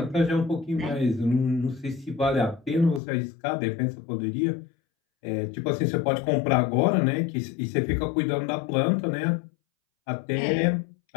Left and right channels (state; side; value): drops out; right; at 3.0 s